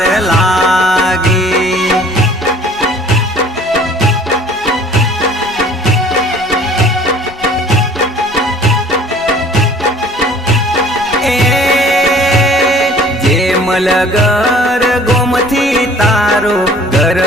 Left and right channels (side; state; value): both; normal; correlation 0.51